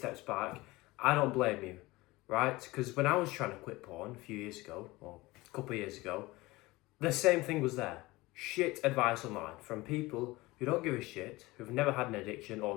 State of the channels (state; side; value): quieter; right; 20.8 dB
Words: back. I don't blame you, right? Because when I was trying to quit porn a few years ago, or a couple of years ago, the same thing was there. Shit advice online from people who don't give a shit, who've never had an addiction or